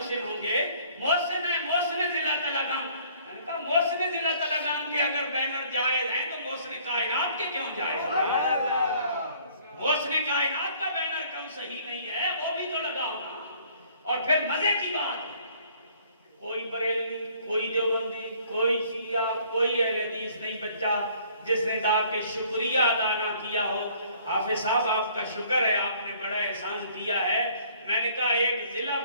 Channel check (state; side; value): inverted; both; correlation -0.58